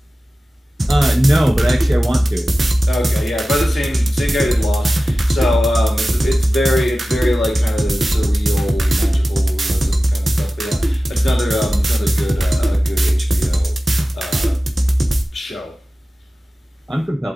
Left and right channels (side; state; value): both; normal; correlation 0.95